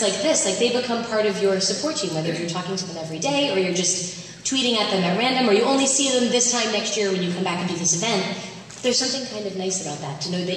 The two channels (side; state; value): both; identical; correlation 1.00